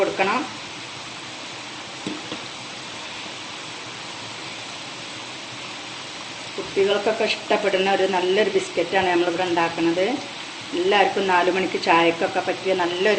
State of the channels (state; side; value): identical; both; correlation 1.00